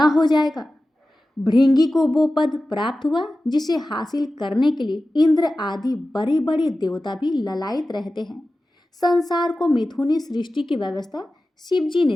हो जाएगा। भृंगी को वो पद प्राप्त हुआ जिसे हासिल करने के लिए इंद्र आदि बड़े बड़े देवता भी ललायित रहते हैं। संसार को मिथुनी सृष्टि की व्यवस्था शिव जी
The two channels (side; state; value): both; normal; correlation 0.95